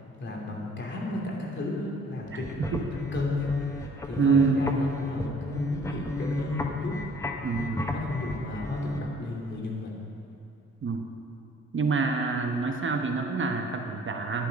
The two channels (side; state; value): both; normal; correlation 0.56